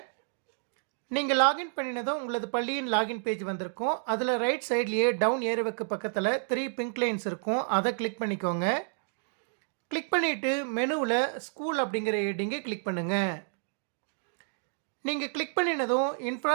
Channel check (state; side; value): silent; left; digital silence